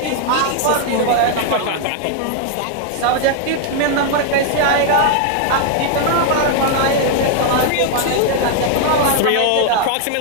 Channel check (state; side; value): different; both; correlation 0.00